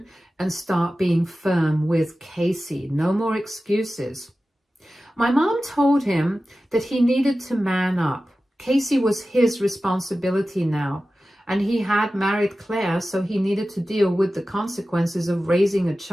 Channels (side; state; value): both; normal; correlation 0.95